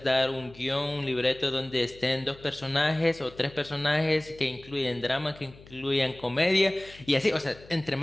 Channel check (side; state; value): left; noise; hum, 22 dB below the sound